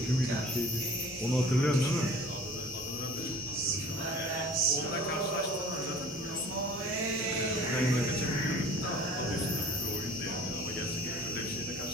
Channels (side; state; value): both; normal; correlation 0.47